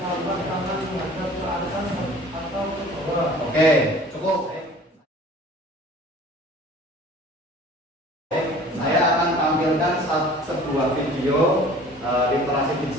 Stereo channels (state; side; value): normal; both; correlation 0.46